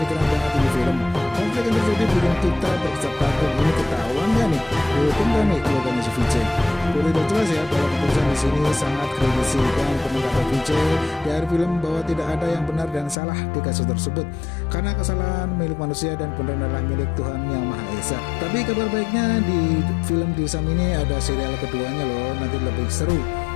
keren banget ini film. Konflik yang terjadi bikin kita berkecap takut. Ini ketahuan gak nih? Dihukum gak nih keluarganya si Vijay? Udah jelas ya bahwa keputusan di kasus ini sangat kritisi dan penuh kata Vijay di akhir film bahwa tidak ada yang benar dan salah di kasus tersebut karena kesalahan milik manusia dan benar adalah milik Tuhan Yang Maha Esa. Tapi kabar baiknya di film Dirsam ini ada serial keduanya loh, nanti lebih seru.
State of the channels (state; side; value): drops out; right; at 13.2 s